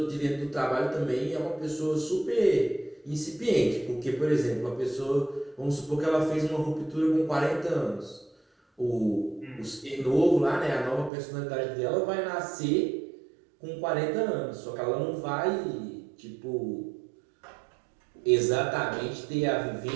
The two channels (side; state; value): left; drops out; at 11.1 s